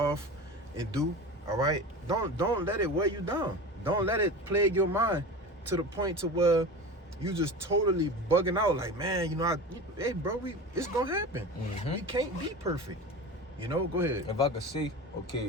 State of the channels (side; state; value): both; normal; correlation 0.31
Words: and do, all right? Don't let it weigh you down. Don't let it plague your mind to the point to where you just totally bugging out like, man, you know, hey, bro, it's gonna happen. We can't be perfect. You know, go ahead. If I could see,